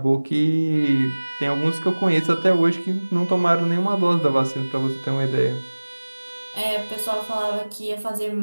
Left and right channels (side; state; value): both; inverted; correlation -1.00